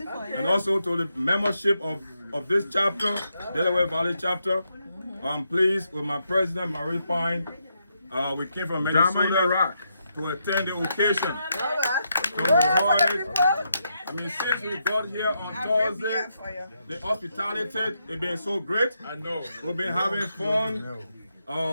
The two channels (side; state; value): both; inverted; correlation -0.81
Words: also to the membership of this chapter, Delaware Valley chapter. I'm pleased with my president, Marie Pine. We came from Minnesota to attend the occasion. I mean, since we got here on Thursday, the hospitality has been so great. I know. We've been having fun.